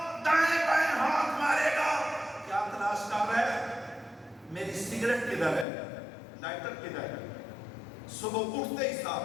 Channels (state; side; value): drops out; right; at 5.7 s